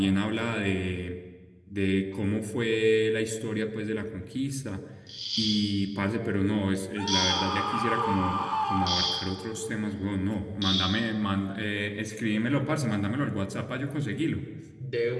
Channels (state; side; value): identical; both; correlation 1.00